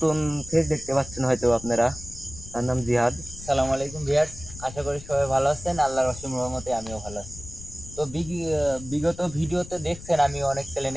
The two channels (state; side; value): noise; left; rumble, 15 dB below the sound